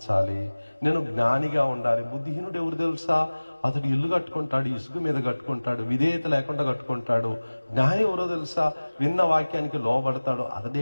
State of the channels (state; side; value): inverted; both; correlation -1.00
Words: నేను జ్ఞానిగా ఉండాలి. బుద్ధిహీనుడు ఎవరు తెలుసా? అతడు ఇల్లు కట్టుకుంటాడు, ఇసుక మీద కట్టుకుంటాడు, విధేయత లేకుండా కట్టుకుంటాడు. జ్ఞాని ఎవరో తెలుసా? విన్న వాక్యానికి లోబడతాడు,